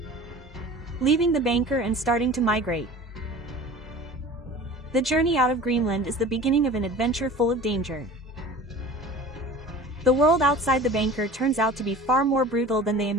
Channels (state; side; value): normal; both; correlation 0.41